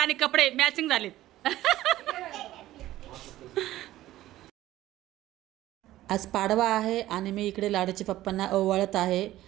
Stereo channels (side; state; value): left; quieter; 15.0 dB